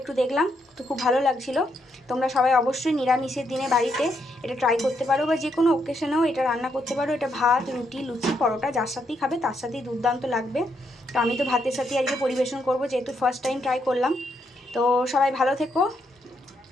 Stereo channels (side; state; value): both; normal; correlation 0.77